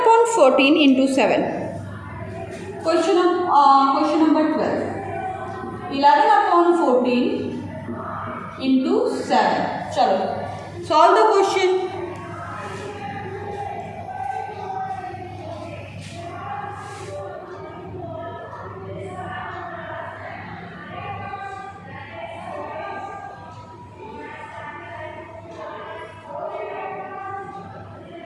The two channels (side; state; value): both; identical; correlation 1.00